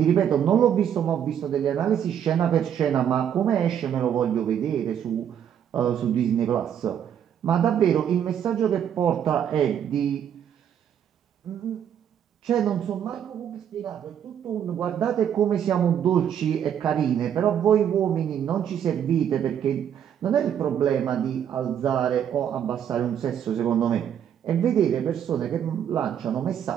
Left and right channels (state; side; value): quieter; left; 9.2 dB